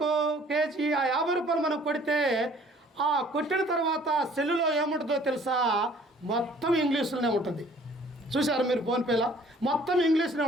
కేజీ, ఆ 50 రూపాయలు మనం కొడితే ఆ కొట్టిన తర్వాత సెల్లులో ఏముంటుందో తెలుసా? మొత్తం ఇంగ్లీషులోనే ఉంటుంది. చూశారు మీరు? ఫోన్పేలో మొత్తం ఇంగ్లీష్లో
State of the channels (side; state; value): both; normal; correlation 0.55